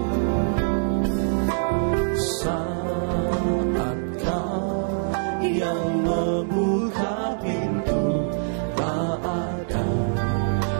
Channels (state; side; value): silent; left; digital silence